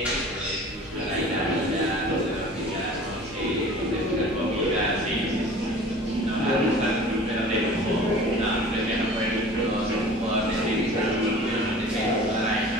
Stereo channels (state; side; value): normal; both; correlation 0.43